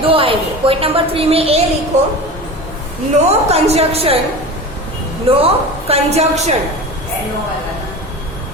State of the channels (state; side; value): normal; both; correlation 0.32